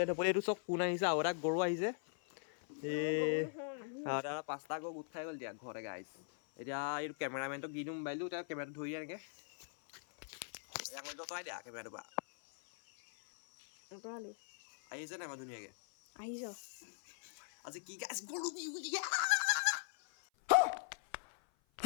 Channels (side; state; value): right; silent; 51 dB below the other